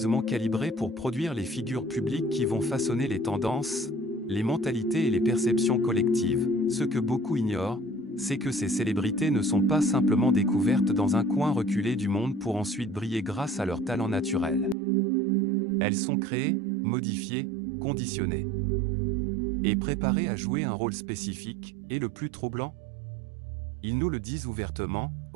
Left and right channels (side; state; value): left; drops out; at 14.8 s